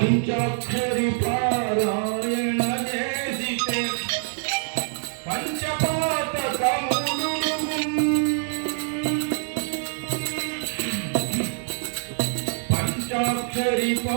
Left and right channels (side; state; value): left; silent; 62 dB below the other